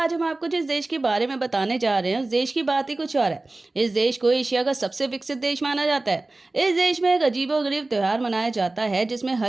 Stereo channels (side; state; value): left; quieter; 3.0 dB